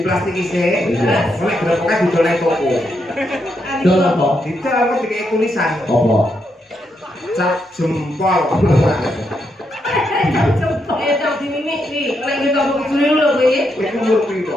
plastik isi. Iya. Oleh gerobaknya didoleng toko. Dol apa? Didol kok dikei tulisan. Apa? Cap jempol. Tak dimimik iki. Nek kita kok juri lho kowe. Kowe umur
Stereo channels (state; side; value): normal; both; correlation 0.80